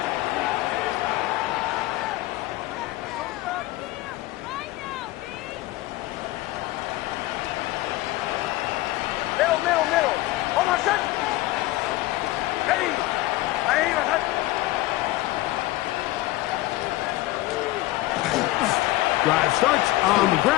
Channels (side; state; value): right; quieter; 17.7 dB